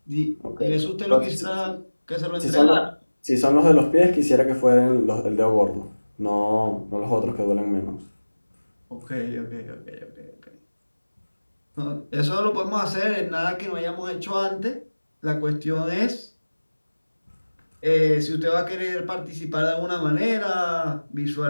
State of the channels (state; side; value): inverted; both; correlation -1.00